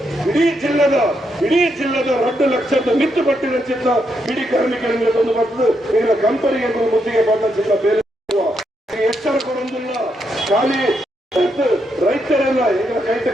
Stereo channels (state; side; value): normal; both; correlation 0.80